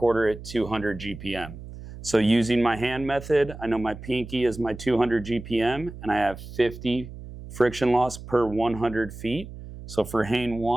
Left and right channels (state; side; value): noise; right; hum, 13 dB below the sound